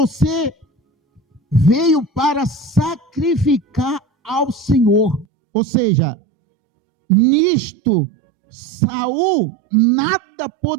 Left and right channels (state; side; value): drops out; left; at 5.2 s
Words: veio para sacrificar ao Senhor. Ou seja, nisto Saul nada